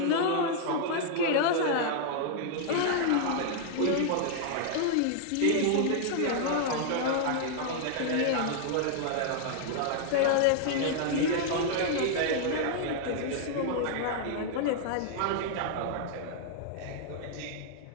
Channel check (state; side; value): different; both; correlation -0.01